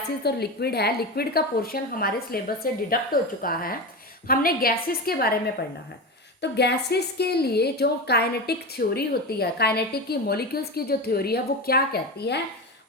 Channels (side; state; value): both; normal; correlation 0.22